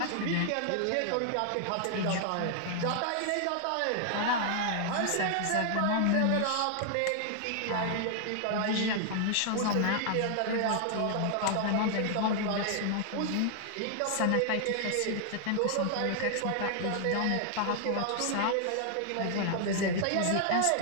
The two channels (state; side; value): different; both; correlation 0.00